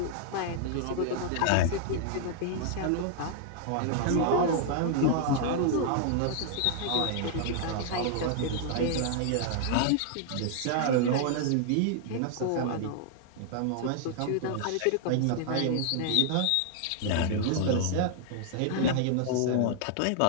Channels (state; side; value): different; both; correlation -0.01